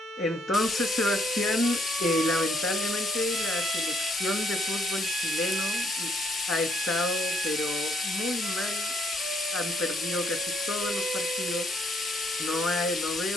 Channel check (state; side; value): normal; both; correlation 0.71